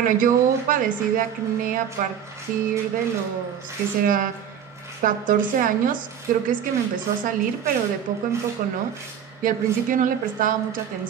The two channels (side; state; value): left; quieter; 8.6 dB